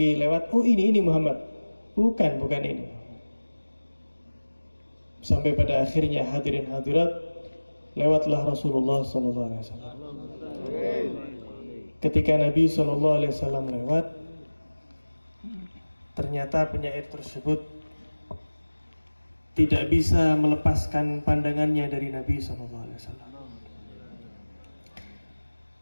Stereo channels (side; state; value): both; inverted; correlation -1.00